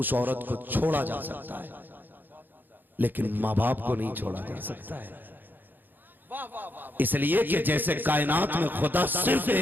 औरत को छोड़ा जा सकता है, लेकिन माँ बाप को नहीं छोड़ा जा सकता है। इसलिए कि जैसे कायनात में खुदा सिर्फ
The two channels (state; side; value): late; left; 0.090 ms